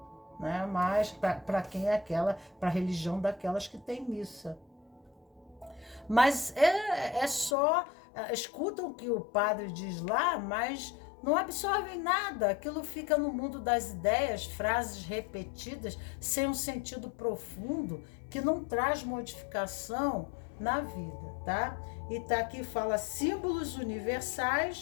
né? Mas para quem é para a religião daquelas que tem missa. Mas é só, escutam o que o padre diz lá, mas não absorvem nada, aquilo fica no mundo das ideias, frases repetidas, sem um sentido profundo, que não traz modificação na vida, tá? E tá aqui, fala símbolos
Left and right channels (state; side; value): drops out; right; at 7.6 s